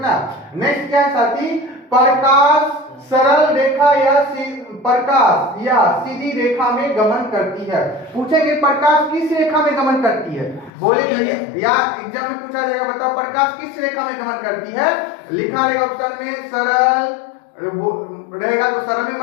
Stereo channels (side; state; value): right; drops out; at 10.7 s